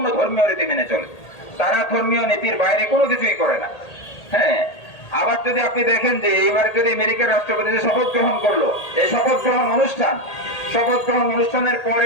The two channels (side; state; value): right; late; 1.8 ms